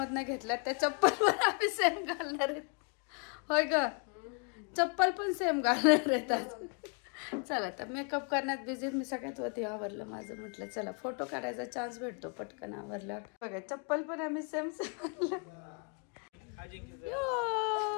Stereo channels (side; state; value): right; quieter; 38.0 dB